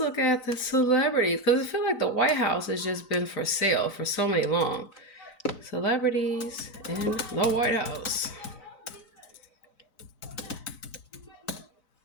look at the celebrities, because I feel like the White House has just been for sale for so many long. Celebrities in the White House.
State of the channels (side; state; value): right; late; 4.0 ms